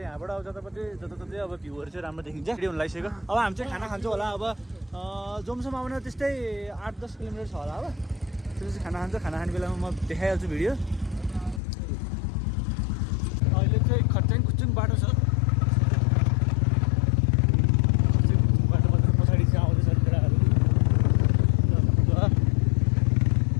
अब जताततै अब भ्यूहरू चाहिँ राम्रो देखिन्छ। भिडियो हुन लागिसक्यो। अब हामी चाहिँ खाना खान्छौँ होला। अब जमसम्म आउन त्यस्तै 8-10 किलोमिटर छ होला। अब त्यसपछि खाना खाने बेलामा म देखाइहाल्छु भिडियो। अहिले चाहिँ खच्चाङ खुच्चुङ बाटो छ। बाटोबाट पछाडि चाहिँ आउँदैछ केटाहरू।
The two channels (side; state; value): right; drops out; at 11.6 s